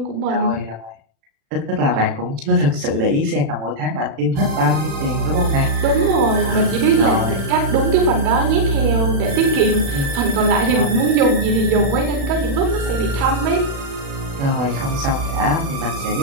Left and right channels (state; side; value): late; left; 36 ms